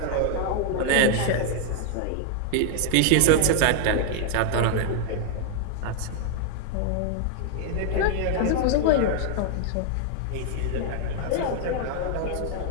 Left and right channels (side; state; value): both; different; correlation 0.00